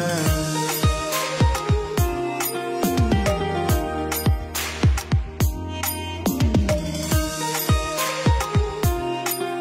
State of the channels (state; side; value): identical; both; correlation 1.00